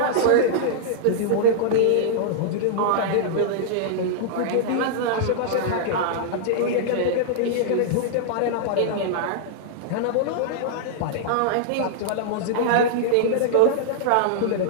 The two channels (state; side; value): different; both; correlation -0.01